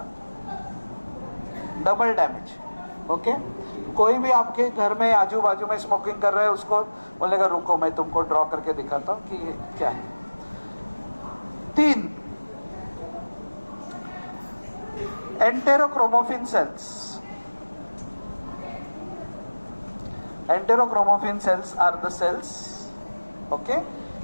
Double damage. Okay? कोई भी आपके घर में आजू बाजू में स्मोकिंग कर रहा है उसको बोलेगा रुको मैं तुमको ड्रॉ करके दिखाता हूं कि ये क्या है. 3 एंटेरोक्रोमोफिन sales. Enterochromaffin cells are the cells, okay,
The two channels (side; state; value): both; inverted; correlation -1.00